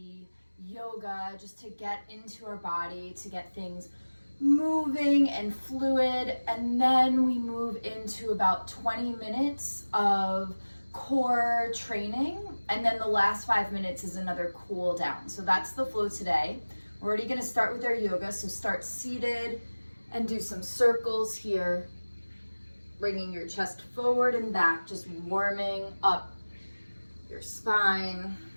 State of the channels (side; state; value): both; inverted; correlation -1.00